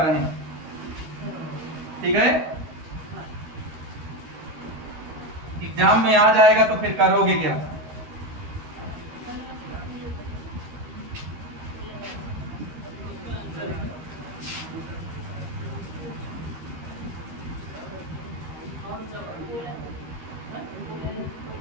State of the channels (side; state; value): left; late; 13 ms